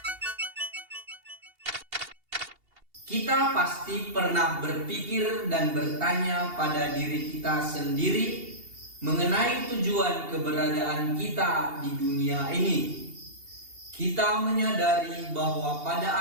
Kita pasti pernah berpikir dan bertanya pada diri kita sendiri mengenai tujuan keberadaan kita di dunia ini. Kita menyadari bahwa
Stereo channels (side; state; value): left; late; 2.8 ms